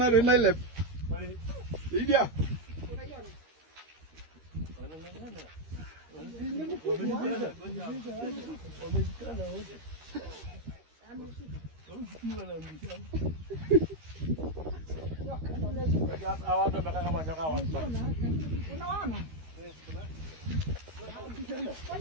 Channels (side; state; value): left; late; 13 ms